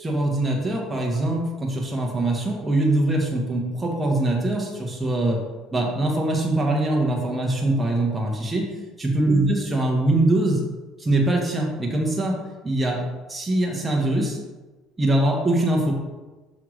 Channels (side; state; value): both; normal; correlation 0.74